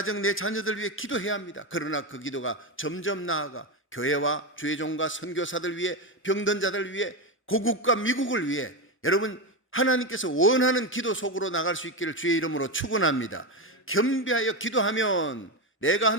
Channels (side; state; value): both; normal; correlation 0.13